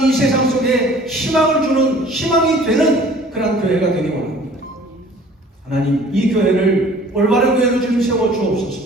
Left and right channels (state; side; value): normal; both; correlation 0.50